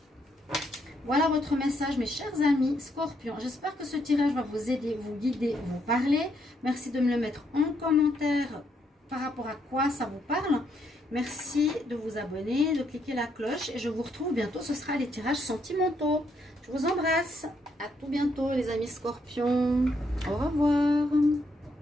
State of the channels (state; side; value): normal; both; correlation 0.75